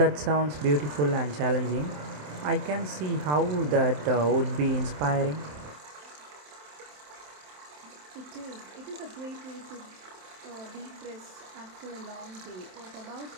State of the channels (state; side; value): late; left; 27 ms